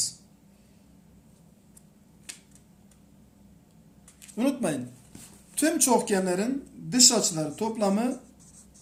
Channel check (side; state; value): both; identical; correlation 1.00